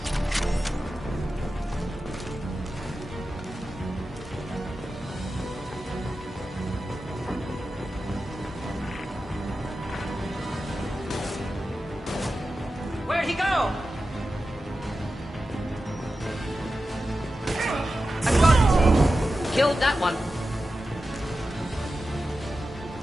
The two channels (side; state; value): both; normal; correlation 0.92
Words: Where'd he go? I got him. Killed that one.